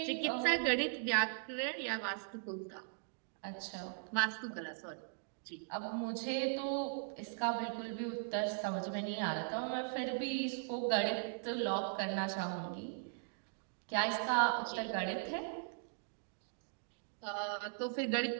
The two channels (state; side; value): silent; left; digital silence